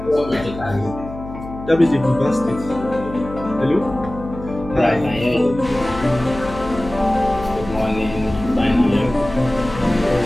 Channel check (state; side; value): noise; left; hum, 12 dB below the sound